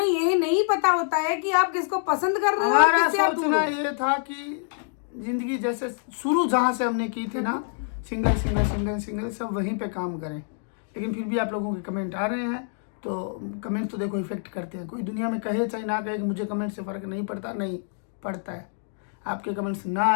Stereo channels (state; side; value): silent; right; digital silence